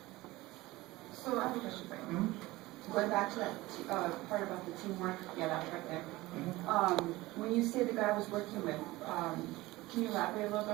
So I have a question for you. Going back to that part about the teamwork, yeah, that's right there. When you say the guy I was working with, can you elaborate a little bit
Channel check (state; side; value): quieter; left; 19.4 dB